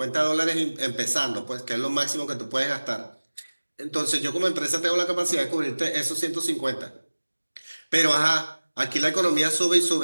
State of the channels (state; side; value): inverted; both; correlation -1.00